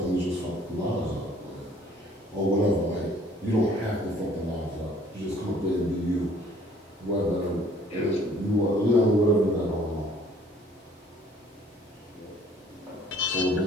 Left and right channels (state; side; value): normal; both; correlation 0.57